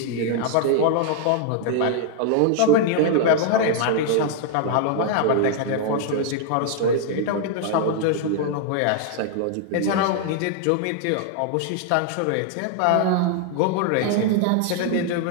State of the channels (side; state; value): both; different; correlation 0.00